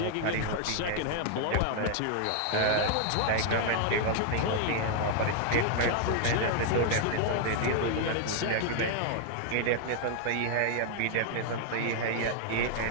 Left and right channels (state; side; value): different; both; correlation 0.00